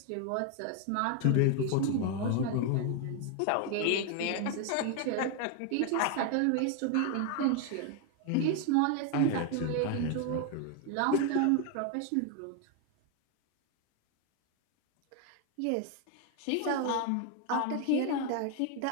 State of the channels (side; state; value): both; different; correlation 0.01